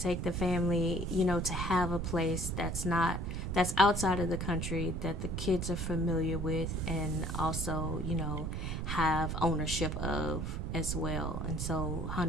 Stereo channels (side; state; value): right; noise; rumble, 3 dB below the sound